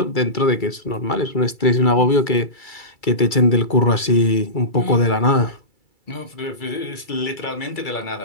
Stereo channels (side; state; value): right; late; 2.3 ms